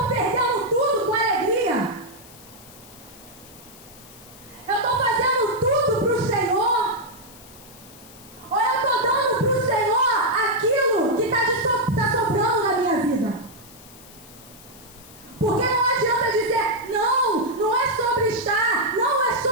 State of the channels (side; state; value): left; noise; hiss, 21 dB below the sound